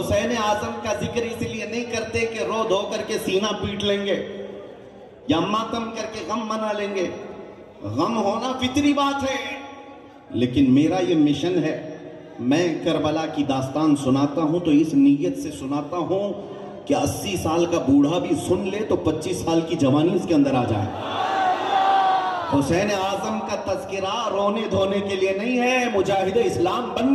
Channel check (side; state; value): both; identical; correlation 1.00